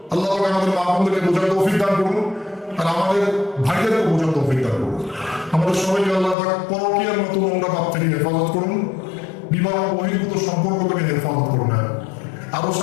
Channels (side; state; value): right; drops out; at 6.4 s